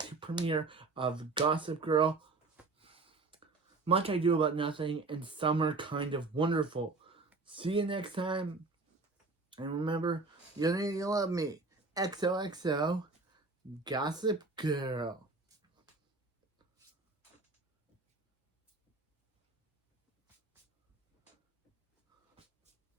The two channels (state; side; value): quieter; left; 3.7 dB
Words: premiere of Gossip Girl. Much I do about nothing, and summer kind of wonderful. See you next time, and remember, you need to love me. XOXO, Gossip Girl.